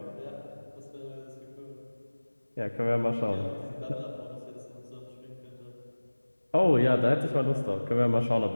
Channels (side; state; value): both; inverted; correlation -1.00